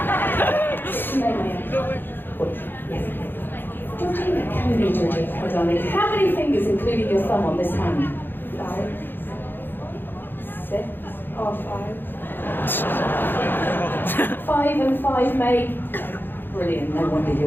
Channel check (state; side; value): late; right; 0.098 ms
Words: Yes. Georgina, come with me, Georgina, my darling. How many fingers, including your thumb, on this hand? 5, 6, or 5. 5 and 5, mate. Brilliant. No wonder